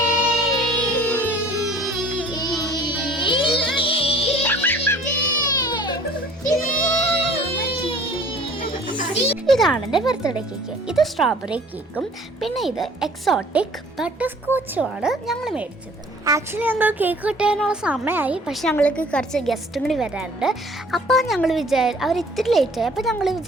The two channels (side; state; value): both; normal; correlation 0.52